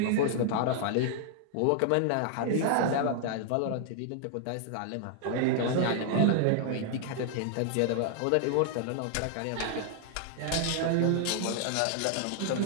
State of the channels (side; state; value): both; different; correlation 0.00